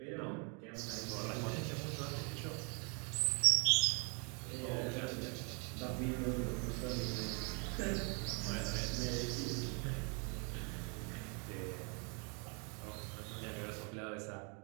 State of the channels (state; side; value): quieter; left; 35.2 dB